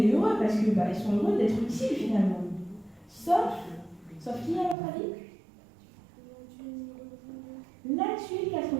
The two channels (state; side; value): drops out; left; at 4.8 s